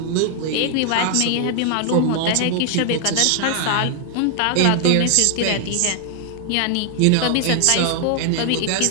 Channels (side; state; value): both; different; correlation 0.00